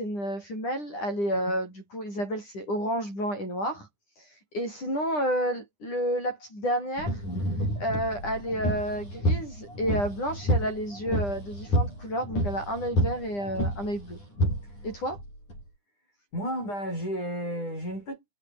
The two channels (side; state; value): right; late; 10 ms